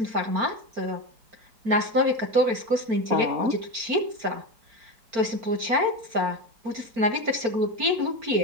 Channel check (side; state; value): left; late; 4.4 ms